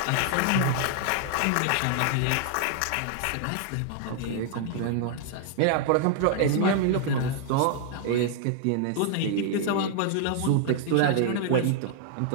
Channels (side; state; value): both; different; correlation 0.00